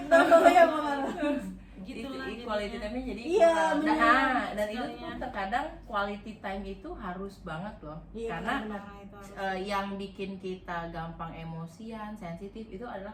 ya Bang. Gitu lah Itu quality time-nya jadi Iya, kurang. benar. Dan itu tuh Sekalinya. terkadang quality time itu harus banget loh, Iya, karena benar. Nah, itu harus. yang bikin kita gampang emosian, sensitif itu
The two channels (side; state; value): both; identical; correlation 1.00